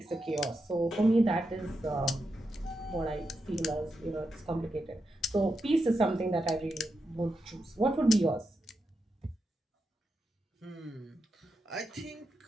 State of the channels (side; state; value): both; normal; correlation 0.86